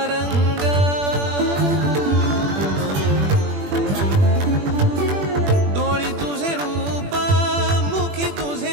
रंग डोळी तुझे रूप मुखी तुझे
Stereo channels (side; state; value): left; late; 21 ms